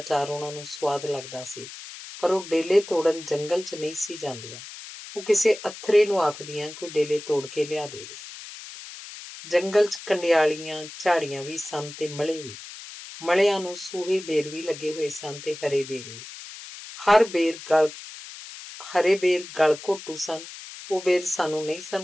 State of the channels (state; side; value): noise; left; hiss, 13 dB below the sound